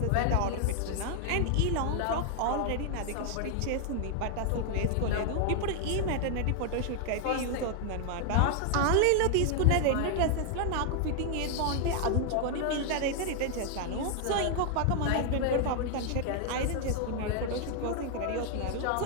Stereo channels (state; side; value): different; both; correlation 0.00